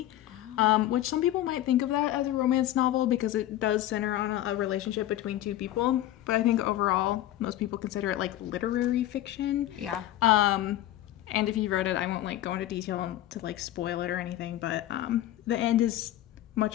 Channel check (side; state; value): right; quieter; 13.7 dB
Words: which some people might think of that as a romance novel because it does center on a relationship between two people. But I think overall, most people consider it like literary fiction. Yeah. And if you wrote it, I won't like go into detail to like spoil it or anything, but the end is